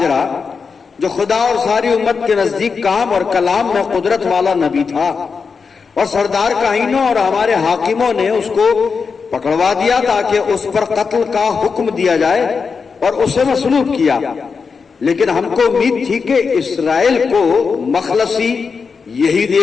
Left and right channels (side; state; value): right; quieter; 5.3 dB